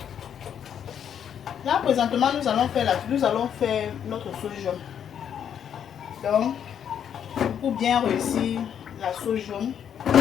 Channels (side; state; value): right; quieter; 8.7 dB